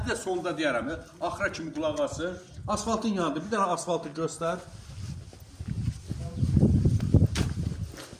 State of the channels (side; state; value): both; identical; correlation 1.00